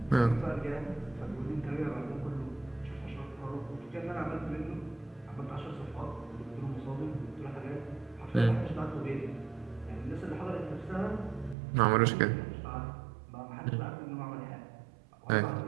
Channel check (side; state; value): left; drops out; at 11.6 s